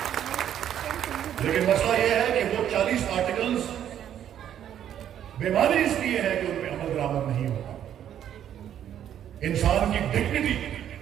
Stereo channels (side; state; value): left; quieter; 10.2 dB